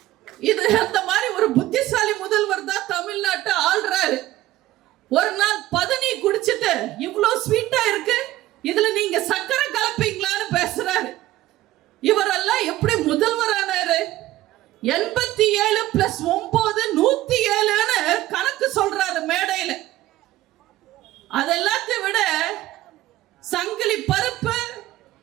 இது அந்த மாதிரி ஒரு புத்திசாலி முதல்வர் தான் தமிழ்நாட்டை ஆள்றாரு. ஒரு நாள் பதனி குடிச்சிட்டு இவ்வளோ ஸ்வீட்டா இருக்கு, இதுல நீங்க சக்கரை கலப்பீங்களான்னு பேசுறாரு. இவரெல்லாம் எப்படி முதல்வர் ஆனாரு? 87 + 9 107ன்னு கணக்கு சொல்றாரு மேடையில. அதெல்லாத்தையும் விட சங்கிலி பருப்பு,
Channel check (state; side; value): quieter; left; 15.6 dB